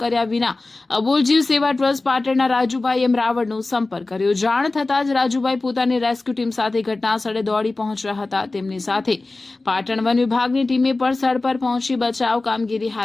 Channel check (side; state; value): right; quieter; 3.3 dB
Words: કર્યા વિના અબુલ જીવ સેવા ટ્રસ્ટ પાટણના રાજુભાઈ એમ રાવળનો સંપર્ક કર્યો। જાણ થતાં જ રાજુભાઈ પોતાની રેસ્ક્યુ ટીમ સાથે ઘટના સ્થળે દોડી પહોંચ્યા હતા। તેમની સાથે પાટણ વન વિભાગની ટીમે પણ સ્થળ પર પહોંચી બચાવ કામગીરી